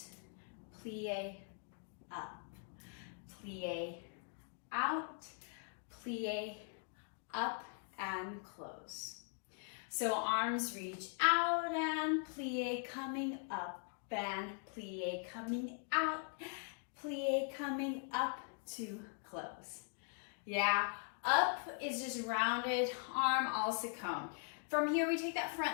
plie, up, plie, out, plie, up, and close. So arms reach out and plie coming up, and plie coming out, plie coming up to close. Yeah, up is just rounded, arm also come. From here, we take that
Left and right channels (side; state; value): right; silent; 50 dB below the other